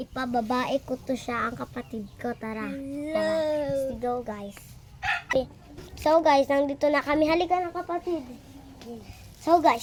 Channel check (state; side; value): identical; both; correlation 1.00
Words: ko to siya ang kapatid ko. Tara. Let's go guys. Okay. So guys, nandito na kami. Halika na kapatid. So